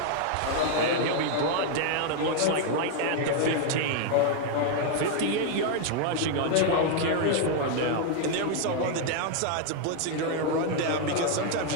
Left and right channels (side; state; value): both; different; correlation 0.00